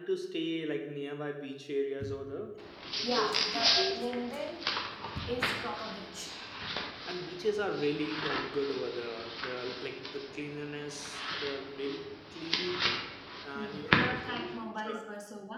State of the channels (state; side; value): identical; both; correlation 1.00